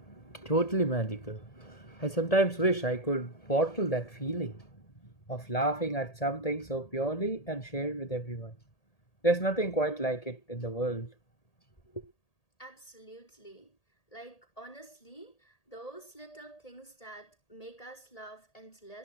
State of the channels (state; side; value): late; right; 1.8 ms